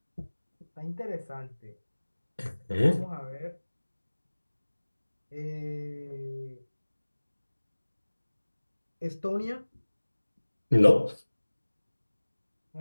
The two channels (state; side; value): inverted; both; correlation -1.00